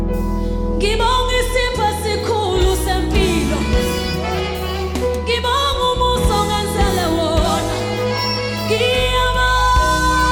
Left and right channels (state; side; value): identical; both; correlation 1.00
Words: Ngibonga isipho esikhulu sempilo. Ngibonga umusa ongenzele wona. Ngiyabonga